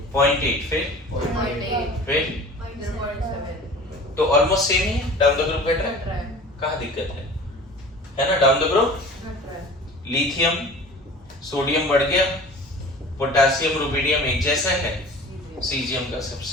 फिर तो ऑलमोस्ट सेम ही है, डाउन द ग्रुप घट रहा है। कहाँ दिक्कत है ना। Down the group lithium sodium बढ़ गया, पोटेशियम रुबिडियम एक जैसा है, सीजियम का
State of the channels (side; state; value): both; normal; correlation 0.41